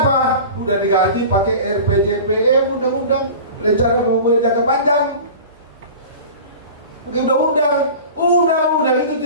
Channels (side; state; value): both; inverted; correlation -0.37